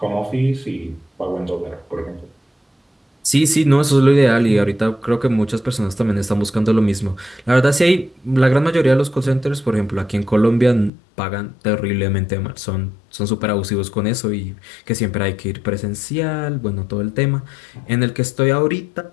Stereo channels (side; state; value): right; drops out; at 10.9 s